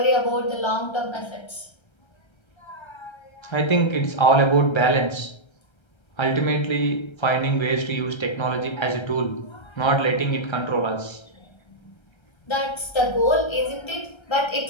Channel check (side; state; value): right; late; 1.3 ms